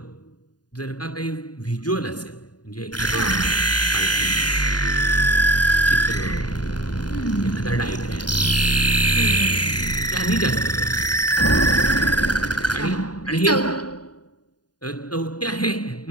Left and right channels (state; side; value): late; right; 0.69 ms